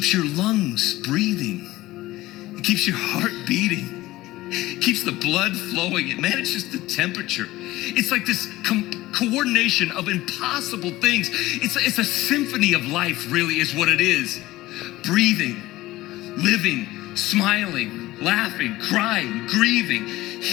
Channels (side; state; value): right; quieter; 17.5 dB